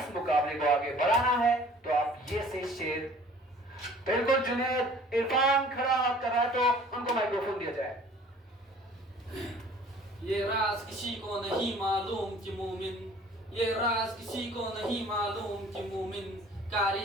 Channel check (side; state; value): both; normal; correlation 0.50